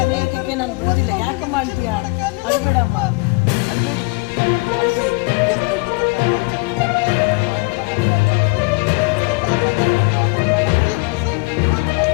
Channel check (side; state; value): right; quieter; 27.3 dB